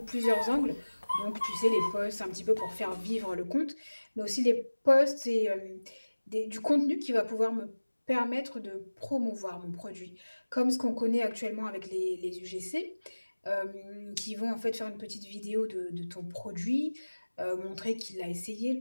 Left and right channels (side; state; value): both; inverted; correlation -1.00